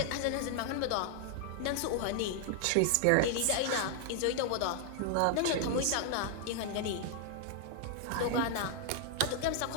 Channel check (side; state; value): both; different; correlation 0.00